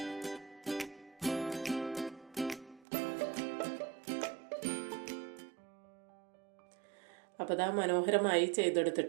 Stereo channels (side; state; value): left; drops out; at 2.9 s